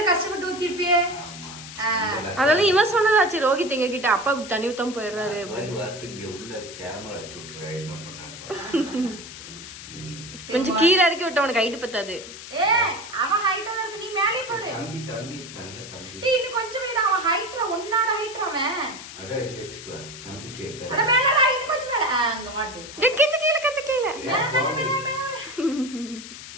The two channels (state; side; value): noise; left; hiss, 13 dB below the sound